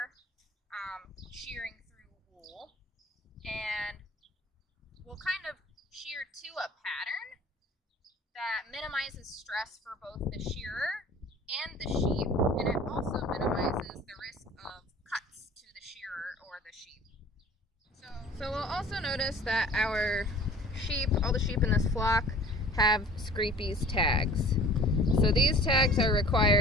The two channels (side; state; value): both; normal; correlation 0.46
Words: shearing through wool. And we'll kind of shear to a pattern that minimizes stress for both the shearer and the sheep, and it also minimizes the risk of cuts to the shearer or the sheep. So we'll also notice that our sheep, all the sheep in this flock, have Scrapie's tags. So these tags are